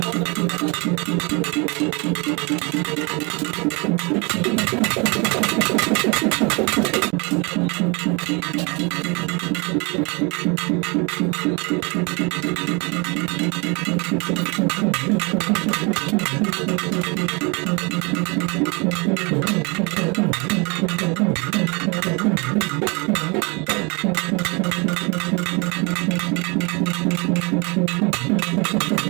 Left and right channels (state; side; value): quieter; left; 30.4 dB